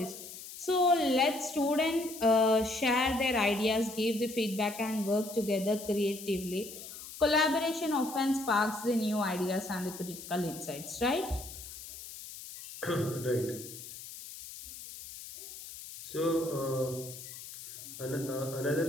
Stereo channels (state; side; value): noise; left; hiss, 13 dB below the sound